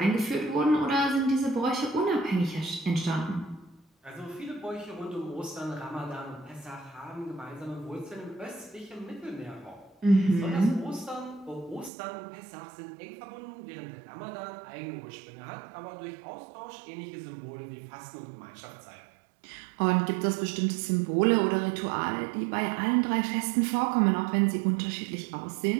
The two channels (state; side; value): drops out; left; at 11.9 s